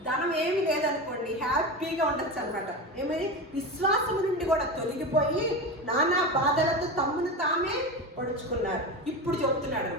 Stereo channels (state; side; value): normal; both; correlation 0.23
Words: ధనం ఏమి లేదనుకోండి హ్యాపీగా ఉండొచ్చు అనమాట. ఏమని? విశ్వాసము నుండి కూడా తొలగిపోయి నానా బాధలతో తమ్మును తామే పొడుచుకున్నారు. ఇప్పుడు చెప్తున్నాడు,